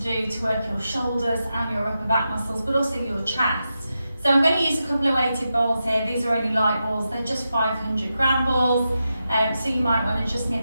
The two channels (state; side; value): inverted; both; correlation -0.89